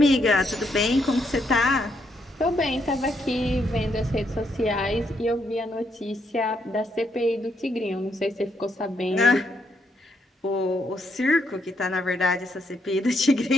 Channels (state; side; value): normal; both; correlation 0.77